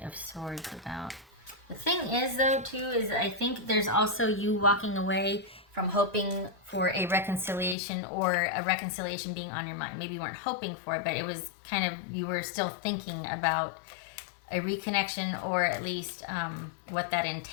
of Swords about? The thing is, though, too, is I think there's also you walking away from hoping for a reconciliation or a reconciliation being on your mind. Maybe you weren't hoping for it, but it was kind of, you were still thinking about a reconnection or at least what that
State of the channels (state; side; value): drops out; right; at 7.8 s